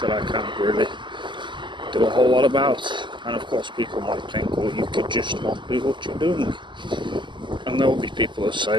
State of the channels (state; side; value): late; left; 0.23 ms